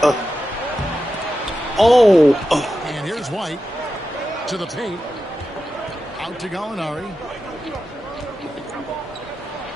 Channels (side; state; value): both; normal; correlation 0.90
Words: And here's White. To the paint. Out to Gallinari.